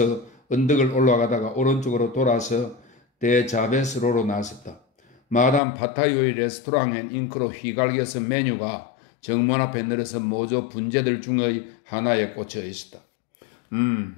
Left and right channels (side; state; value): right; drops out; at 5.6 s